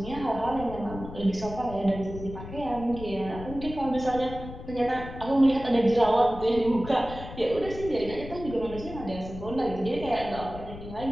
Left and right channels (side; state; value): left; noise; rumble, 12 dB below the sound